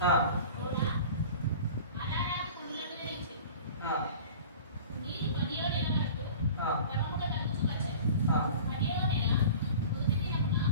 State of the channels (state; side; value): inverted; both; correlation -0.40